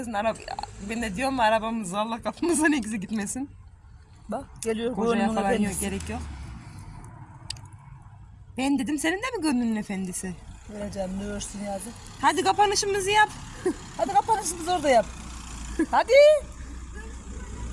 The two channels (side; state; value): both; identical; correlation 1.00